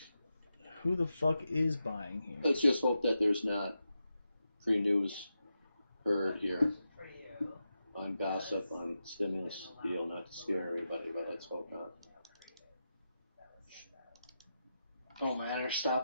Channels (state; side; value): inverted; both; correlation -0.88